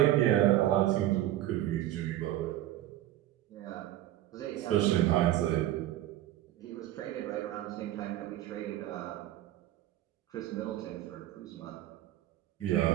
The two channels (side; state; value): left; quieter; 14.0 dB